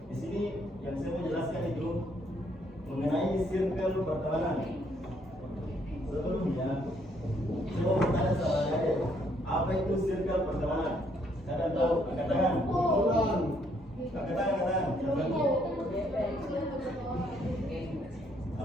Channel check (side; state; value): both; normal; correlation 0.69